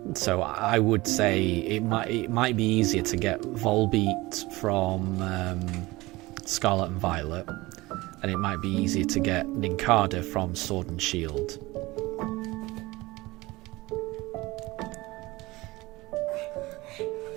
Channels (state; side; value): quieter; left; 20.7 dB